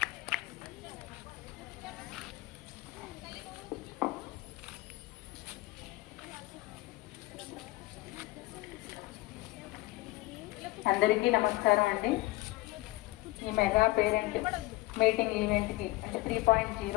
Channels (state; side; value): quieter; right; 19.9 dB